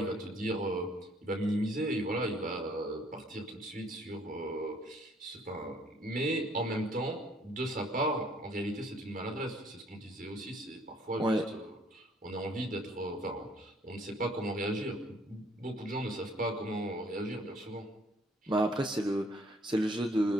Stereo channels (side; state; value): both; normal; correlation 0.62